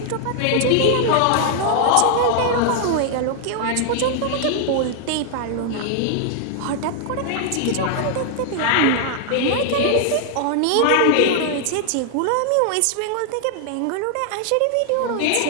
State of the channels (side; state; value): both; different; correlation 0.00